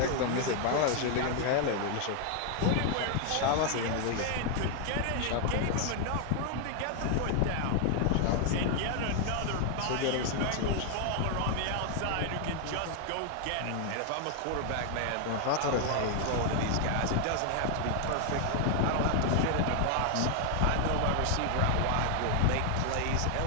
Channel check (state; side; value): different; both; correlation 0.00